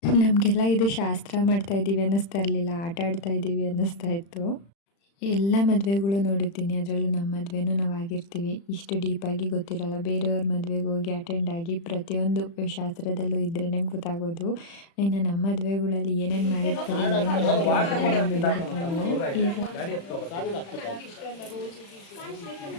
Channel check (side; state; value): right; late; 35 ms